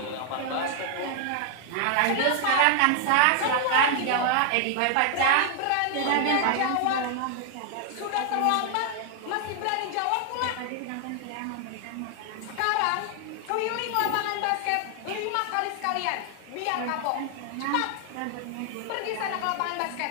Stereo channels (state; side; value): different; both; correlation 0.00